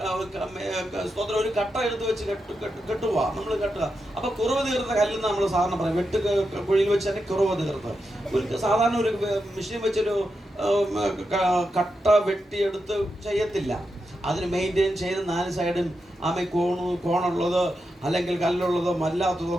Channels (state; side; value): normal; both; correlation 0.87